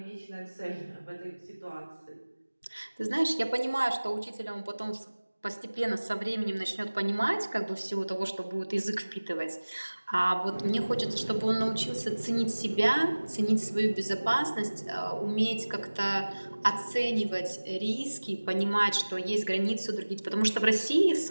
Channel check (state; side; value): inverted; both; correlation -1.00